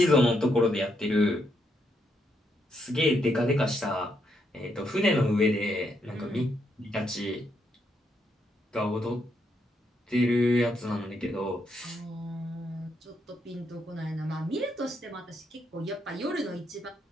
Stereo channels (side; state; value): both; normal; correlation 0.78